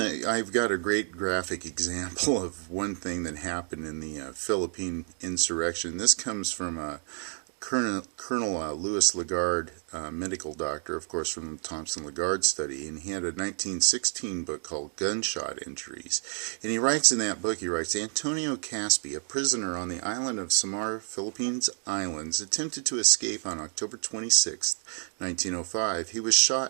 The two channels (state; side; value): silent; left; 58 dB below the other